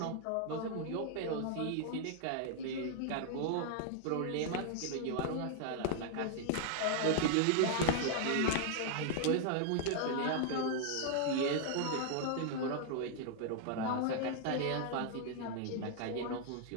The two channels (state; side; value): different; both; correlation 0.00